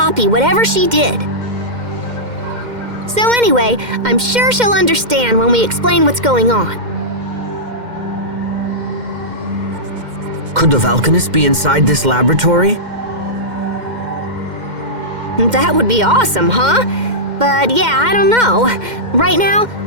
whatever she did. So anyway, I'm sure she'll understand when we explain what's going on. Could the Valkanist be inside this laboratory? That would be awesome, huh? But yeah, I don't know. Right now,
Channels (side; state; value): left; late; 2.1 ms